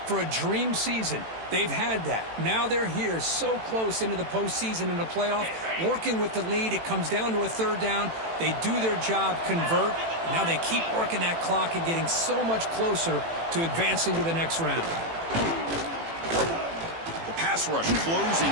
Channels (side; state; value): left; late; 18 ms